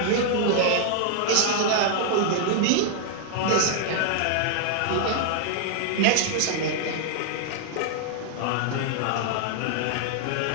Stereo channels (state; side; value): different; both; correlation 0.00